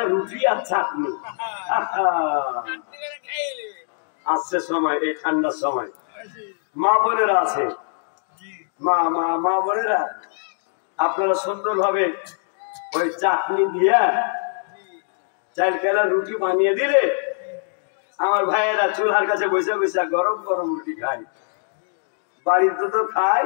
রুটি আর চাটনি। আসছে সময়, এই ঠান্ডার সময় মা বোনেরা আছে, মা বোনেরা আপনারা সুন্দর ভাবে ওই চাটনি দিয়া চাইল কেলা রুটি বানিয়ে দিলে আমার ভাইয়েরা চুলার কাছে বসে বসে গরম গরম রুটি খায়। বাড়িতে তো খাই,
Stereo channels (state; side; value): silent; right; digital silence